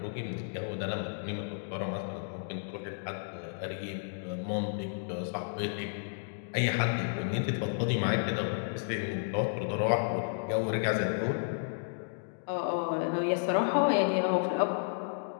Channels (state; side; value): silent; right; digital silence